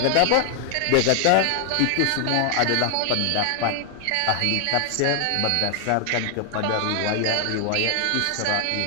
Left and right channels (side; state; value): both; different; correlation 0.00